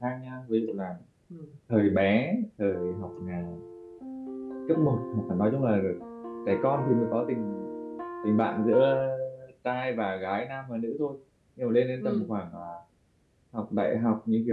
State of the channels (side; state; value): both; identical; correlation 1.00